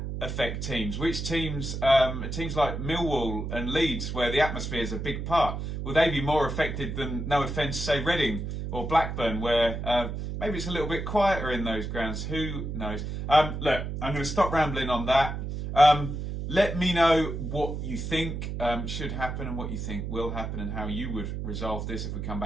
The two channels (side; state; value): right; noise; hum, 5 dB below the sound